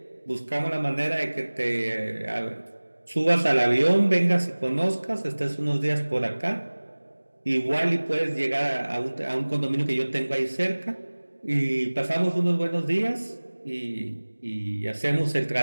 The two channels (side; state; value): both; inverted; correlation -1.00